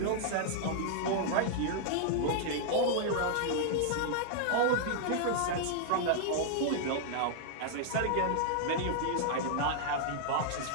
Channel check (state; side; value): different; both; correlation -0.01